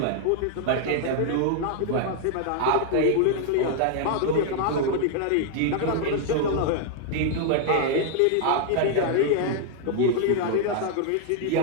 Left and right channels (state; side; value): different; both; correlation 0.00